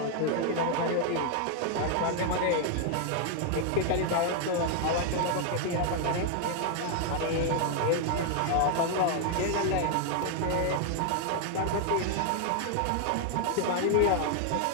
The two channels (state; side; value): different; both; correlation 0.00